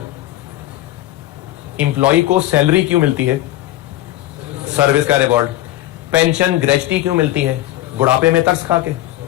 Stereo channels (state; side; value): quieter; right; 15.1 dB